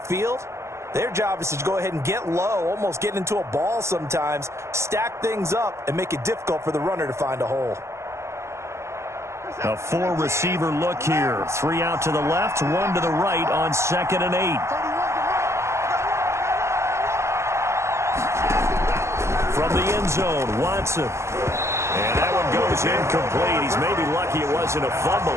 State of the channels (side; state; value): left; late; 0.13 ms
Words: their job is to go ahead and get low, almost get into a ball sometimes, stack things up, and make it difficult for the runner to find a hole. A 4-receiver look here. 3 out to the left, 1 to the right on 2nd and 8. From the end zone, Watson. And that one goes incomplete. He's maybe lucky it wasn't a